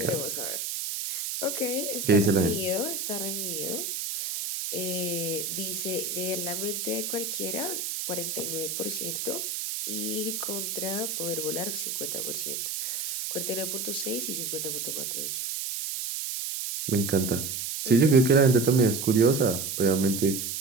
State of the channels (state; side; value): noise; right; hiss, 3 dB below the sound